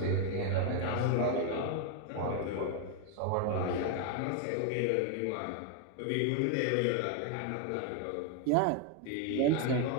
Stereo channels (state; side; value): different; both; correlation 0.01